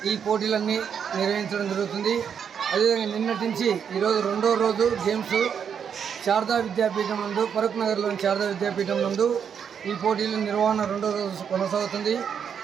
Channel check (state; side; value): quieter; left; 7.5 dB